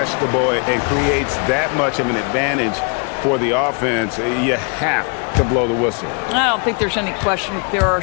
and creates that much of an advantage for the offense, you have to blow the whistle. I don't think there's any question. There are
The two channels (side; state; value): right; quieter; 37.2 dB